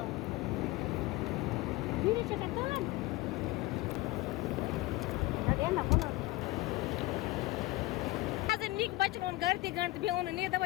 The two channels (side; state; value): right; quieter; 19.3 dB